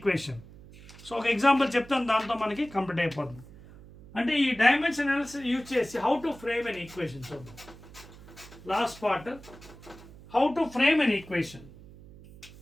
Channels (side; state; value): right; noise; hum, 19 dB below the sound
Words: So ఒక example చెప్తాను, దాంతో మనకి complete అయిపోతుంది. అంటే ఈ dimension analysis use చేసి how to frame an equation చూద్దాం. Last part, how to frame an equation.